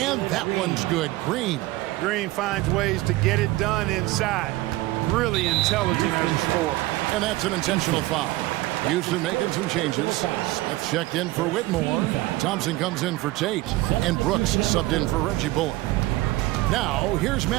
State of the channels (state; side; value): quieter; left; 18.7 dB